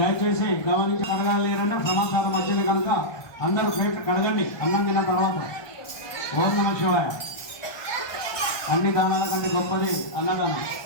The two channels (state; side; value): late; right; 1.2 ms